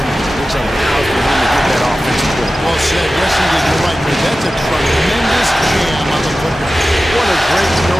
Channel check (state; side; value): normal; both; correlation 0.95